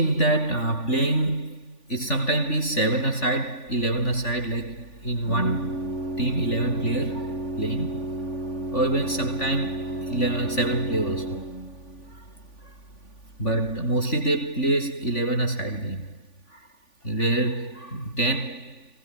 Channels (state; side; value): late; right; 3.5 ms